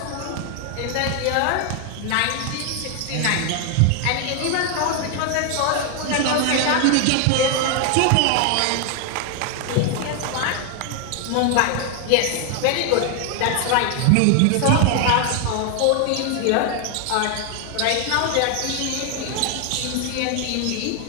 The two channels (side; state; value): both; different; correlation 0.01